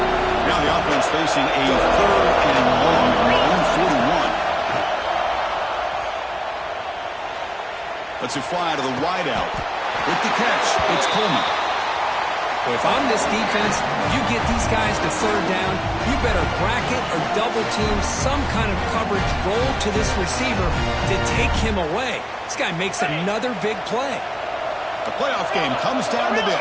Now the offense facing a third and long from their own 41. Let's it fly to the wideout. With the catch, it's Coleman. If I'm this defense, you get these guys to third down, you better bracket or double team some kind of coverage roll to this receiver to take him away. This guy makes another big play. The playoff game comes down to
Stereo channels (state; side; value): identical; both; correlation 1.00